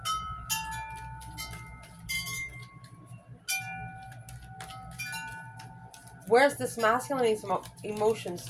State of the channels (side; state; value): both; identical; correlation 1.00